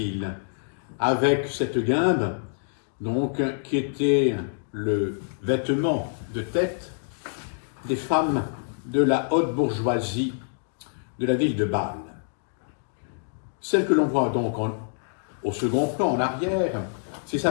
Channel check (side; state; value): right; silent; digital silence